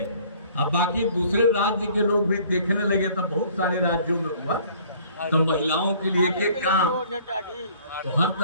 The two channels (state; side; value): inverted; both; correlation -0.55